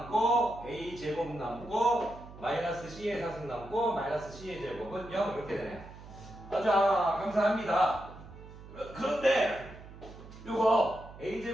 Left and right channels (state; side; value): noise; right; hum, 17 dB below the sound